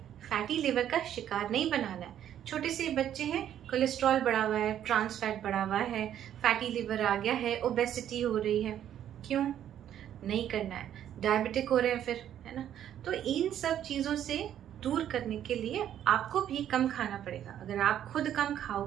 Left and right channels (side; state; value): left; quieter; 10.5 dB